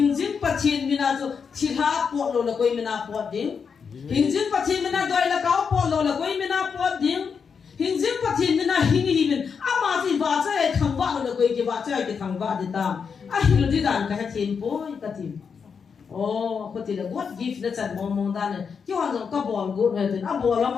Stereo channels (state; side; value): quieter; right; 6.1 dB